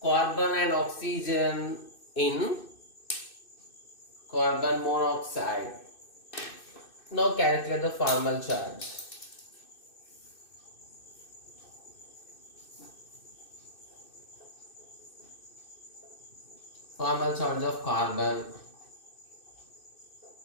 carbon and oxygen in carbon monoxide. Now calculate the formal charge. Formal charge of carbon.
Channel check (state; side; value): late; right; 2.6 ms